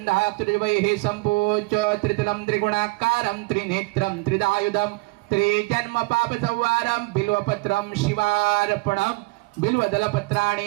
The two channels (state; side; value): quieter; left; 25.6 dB